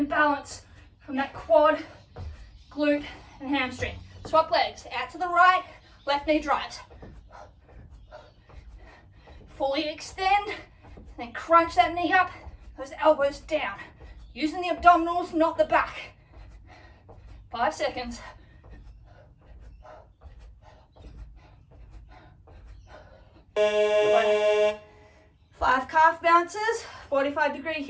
balance from that quad, glute, and hamstring. Swap legs, out to the right, left knee drives. Fully extend, then crunch that knee up, those elbows down. Using the abdominals, not the back. 5 seconds. Good. 5 calf bounces, 45-degree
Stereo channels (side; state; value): both; identical; correlation 1.00